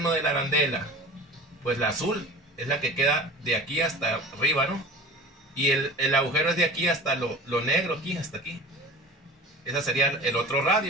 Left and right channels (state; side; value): normal; both; correlation 0.38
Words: de la arandela? Pues la azul, es la que queda de aquí hasta arriba, ¿no? Y el agujero es de aquí hasta lo negro, aquí, hasta aquí. Ese sería el otro